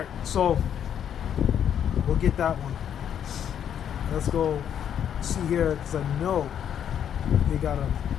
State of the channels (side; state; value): right; quieter; 9.2 dB